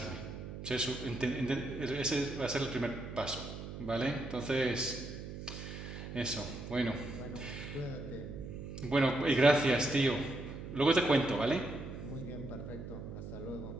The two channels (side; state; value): right; noise; hum, 9 dB below the sound